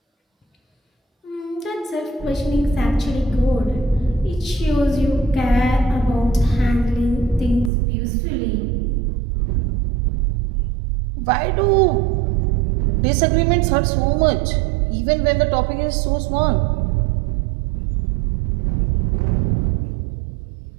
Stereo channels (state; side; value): drops out; left; at 7.7 s